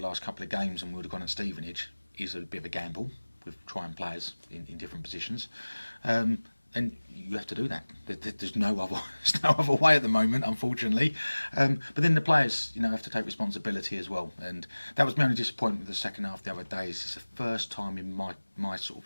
last couple of games and we would have gone at Stevenage is a bit of a gamble with trying players in different positions, and you have to do that. There's no other way at the moment, unfortunately. But then the players, have to take responsibility as well, and that was my only disappointment with the second half the other day. It's the first time in my sort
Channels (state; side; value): inverted; both; correlation -1.00